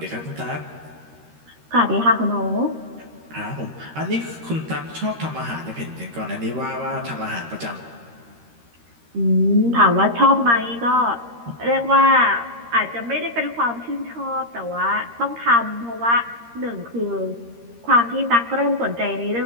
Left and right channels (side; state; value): left; late; 13 ms